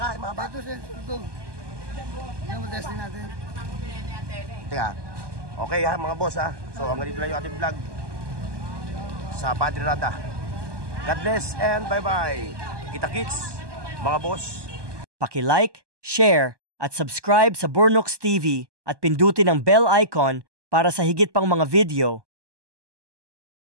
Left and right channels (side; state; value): left; late; 1.2 ms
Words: mahaba. Ito siya, ito. Yan mo testing natin. Teka. Okay, ha, mga boss, ha. So, hanggang dito lang yung ating vlog sa Padre Rada. God bless and bye-bye. Kita-kits, mga boss. Paki-like, share, at subscribe sa Burnooks TV at pindutin ang bell icon para sa higit pang mga video.